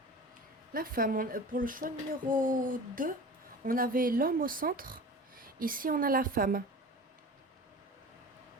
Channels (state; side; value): normal; both; correlation 0.36